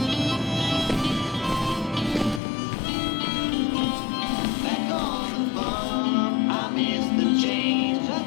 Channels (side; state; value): right; drops out; at 2.4 s